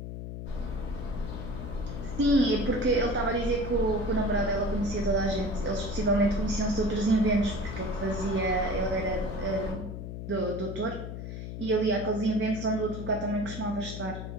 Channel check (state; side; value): noise; left; hum, 8 dB below the sound